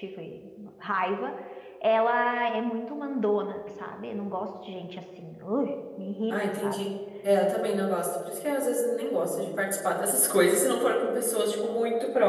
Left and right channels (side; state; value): both; identical; correlation 1.00